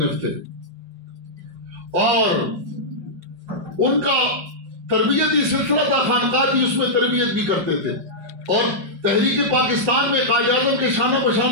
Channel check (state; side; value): late; left; 5.3 ms